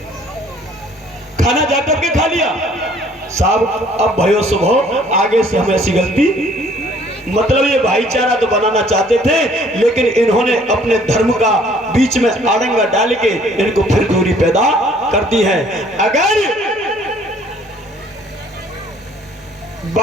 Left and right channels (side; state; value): both; normal; correlation 0.58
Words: खाना जाटव के खा लिया साहब। अब भयो सुबह आगे से हमें ऐसी गलती, मतलब ये भाईचारा तो बनाना चाहते थे, लेकिन इन्होंने अपने धर्म का बीच में आड़ंगा डाल के इनको फिर दूरी पैदा कर दी है। अगर